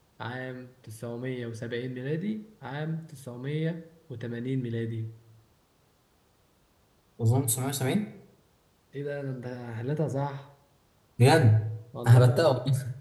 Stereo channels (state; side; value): identical; both; correlation 1.00